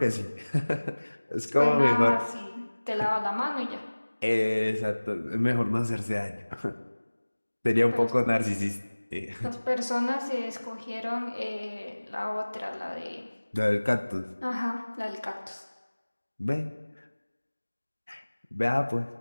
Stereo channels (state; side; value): inverted; both; correlation -1.00